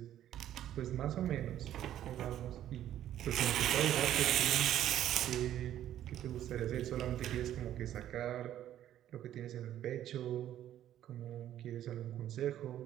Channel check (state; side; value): quieter; left; 11.8 dB